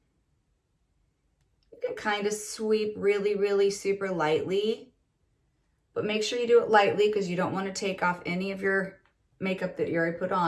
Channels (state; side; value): identical; both; correlation 1.00